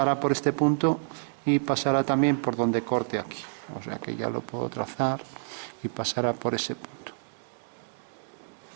por este punto y pasará también por donde corte aquí. O sea que ya lo puedo trazar y pasará por ese punto.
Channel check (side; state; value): left; silent; digital silence